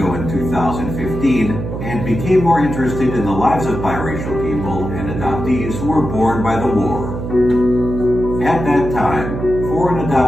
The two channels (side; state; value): right; noise; hum, 6 dB below the sound